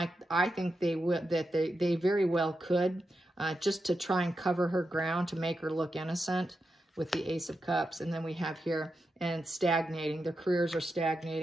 I think they very well could, just to try and cover her ground, to make her look innocent with the Ace of Cups. And then we have here, and stagnating. Their careers are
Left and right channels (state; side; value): normal; both; correlation 0.88